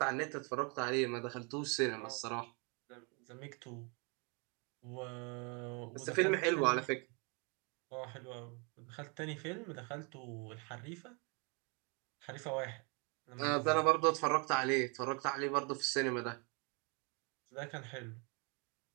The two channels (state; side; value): quieter; left; 33.6 dB